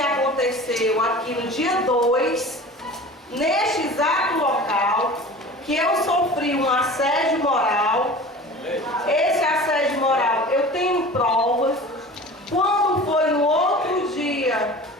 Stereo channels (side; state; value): both; normal; correlation 0.39